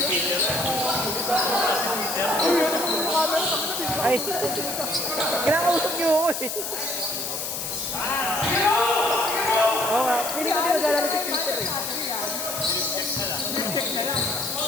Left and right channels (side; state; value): left; noise; hiss, 4 dB below the sound